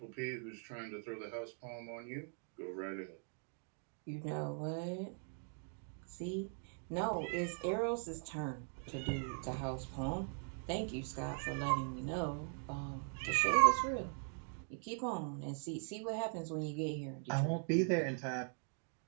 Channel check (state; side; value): silent; left; 50 dB below the other